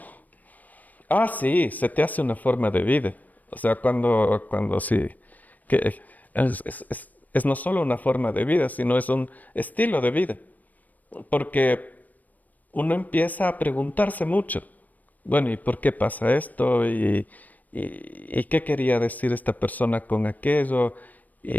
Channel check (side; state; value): right; late; 0.080 ms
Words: Ah, sí, se te hace una forma de vida. O sea, cuando sí, que es no solo una forma de vida, sino es un estilo de vida. Porque uno empieza a preguntarse mucho, bueno, ¿y por qué pasa esto? ¿Y qué quería decir esta persona con aquello?